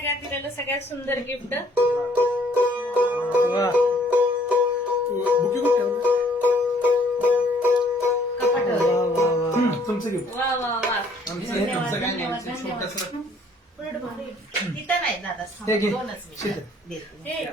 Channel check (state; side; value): normal; both; correlation 0.62